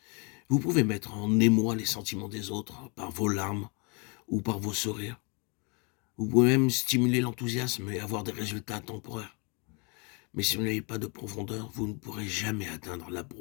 vous pouvez mettre en émoi les sentiments des autres par vos larmes ou par vos sourires. Vous pouvez même stimuler l'enthousiasme et avoir des résultats temporaires. Mais si vous n'avez pas de profondeur, vous ne pourrez jamais atteindre la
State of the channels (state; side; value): quieter; right; 32.4 dB